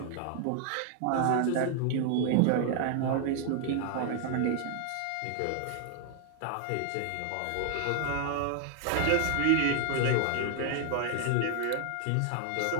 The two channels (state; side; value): different; both; correlation 0.00